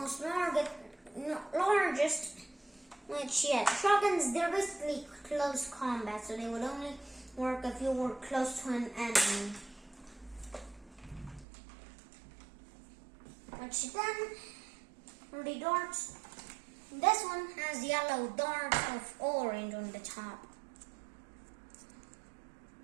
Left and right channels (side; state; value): left; drops out; at 11.5 s